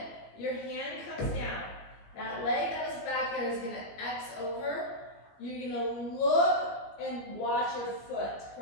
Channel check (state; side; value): late; right; 19 ms